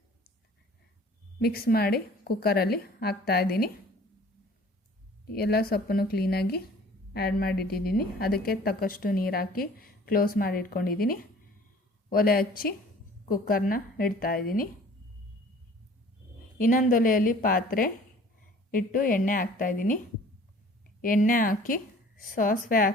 ಮಿಕ್ಸ್ ಮಾಡಿ ಕುಕ್ಕರಲ್ಲಿ ಹಾಕ್ತಾಯಿದ್ದೀನಿ. ಎಲ್ಲ ಸೊಪ್ಪನ್ನು ಕ್ಲೀನಾಗಿ ಆ್ಯಡ್ ಮಾಡಿಟ್ಟಿದ್ದೀನಿ. ಅದಕ್ಕೆ ತಕ್ಕಷ್ಟು ನೀರು ಹಾಕಿ ಕ್ಲೋಸ್ ಮಾಡಿ ಇಟ್ಕೊಂಡಿದ್ದೀನಿ. ಒಲೆ ಹಚ್ಚಿ ಕುಕ್ಕರ್ನ ಇಡ್ತಾಯಿದ್ದೀನಿ. ಇನ್ನೊಂದು ಒಲೆಯಲ್ಲಿ ಪಾತ್ರೆ ಇಟ್ಟು ಎಣ್ಣೆ ಹಾಕ್ತಾಯಿದ್ದೀನಿ. ಎಣ್ಣೆ ಹಾಕಿ ಸಾಸಿವೆ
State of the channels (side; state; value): both; normal; correlation 0.50